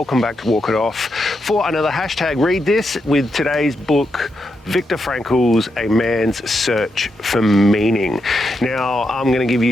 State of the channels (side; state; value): both; normal; correlation 0.84